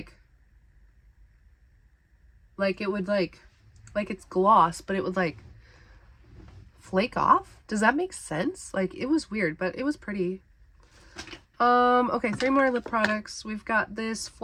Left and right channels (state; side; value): identical; both; correlation 1.00